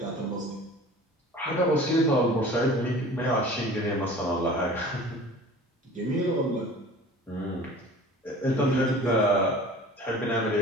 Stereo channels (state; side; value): normal; both; correlation 0.43